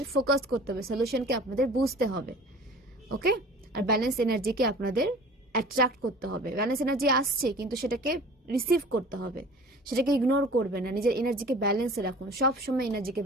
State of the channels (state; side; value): normal; both; correlation 0.44